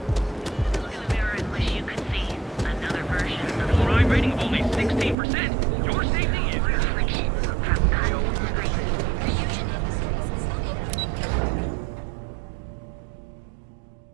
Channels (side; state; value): left; drops out; at 5.2 s